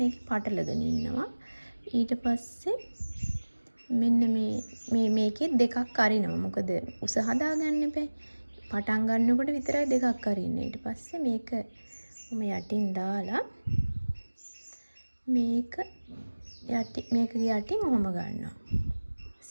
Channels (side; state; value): both; inverted; correlation -1.00